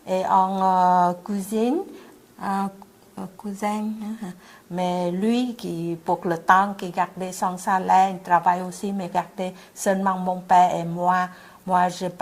et on cousine, cousin. Mais lui, pour le temps qu'il gardait son salaire, il travaille aussi, mais gardait seulement mon père et moi. Moi, je n'ai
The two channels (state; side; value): identical; both; correlation 1.00